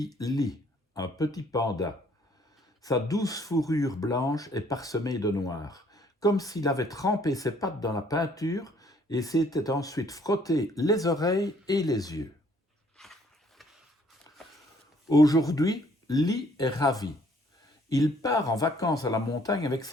Lee, un petit panda. Sa douce fourrure blanche est parsemée de noir, comme s'il avait trempé ses pattes dans la peinture et s'était ensuite frotté les oreilles et les yeux. Aujourd'hui, Lee est ravi. Il part en vacances à la montagne avec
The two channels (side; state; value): both; normal; correlation 0.62